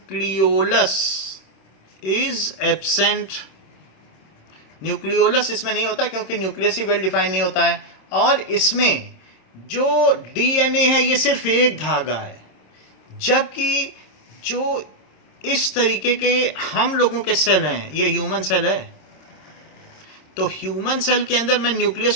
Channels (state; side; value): late; right; 26 ms